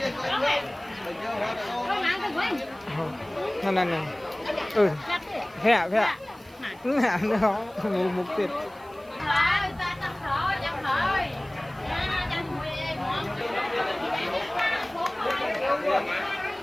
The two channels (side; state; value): right; noise; hiss, 28 dB below the sound